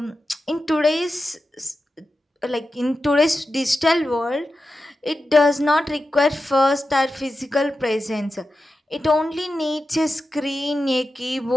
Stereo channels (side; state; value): both; normal; correlation 0.91